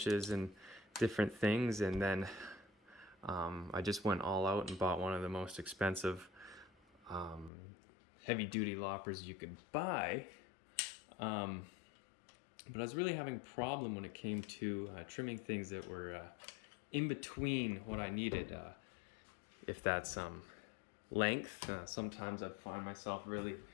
and different things, and then I just went all out and bought one of the most expensive heavy-duty loppers you could buy. But I was really having a problem when it came to trimming things that were in between what I needed. If that's length, sometimes I find myself really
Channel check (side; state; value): right; drops out; at 7.5 s